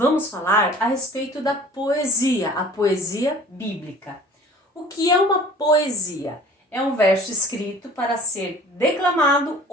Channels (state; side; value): normal; both; correlation 0.48